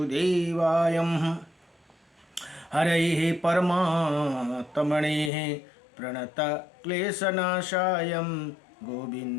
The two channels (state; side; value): drops out; right; at 5.3 s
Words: हरये परमात्मने प्रणतक्लेशनाशाय